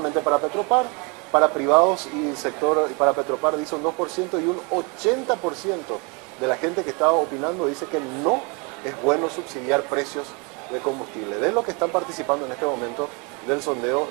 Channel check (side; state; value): left; quieter; 31.8 dB